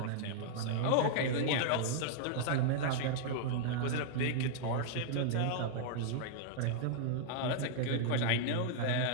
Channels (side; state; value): both; different; correlation -0.01